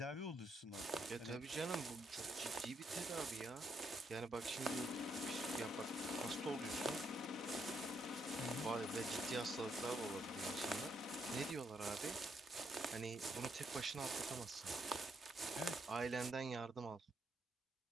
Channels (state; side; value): normal; both; correlation 0.76